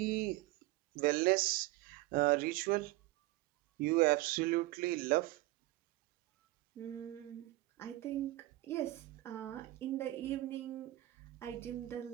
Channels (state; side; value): quieter; left; 18.2 dB